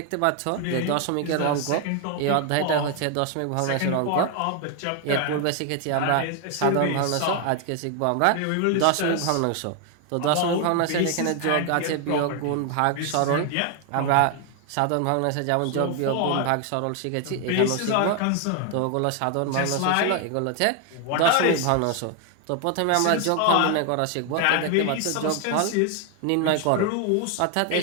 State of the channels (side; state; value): both; different; correlation 0.01